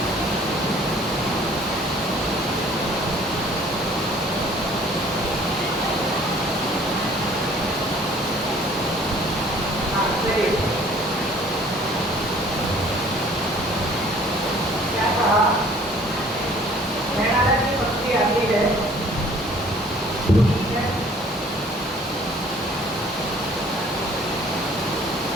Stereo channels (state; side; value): normal; both; correlation 0.54